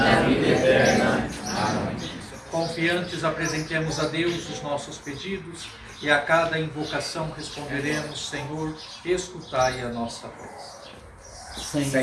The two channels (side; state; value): both; identical; correlation 1.00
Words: vida eterna. Amém. Confiantes apresentemos a Deus os nossos pedidos e a cada invocação responderemos, Senhor, escutai a nossa prece.